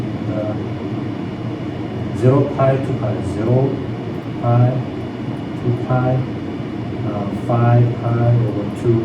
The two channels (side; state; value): both; identical; correlation 1.00